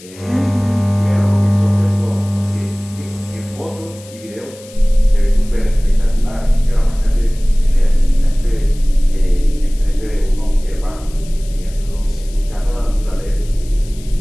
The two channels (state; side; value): noise; left; hiss, 21 dB below the sound